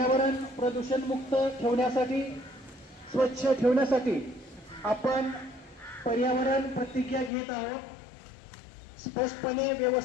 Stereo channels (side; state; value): right; drops out; at 7.3 s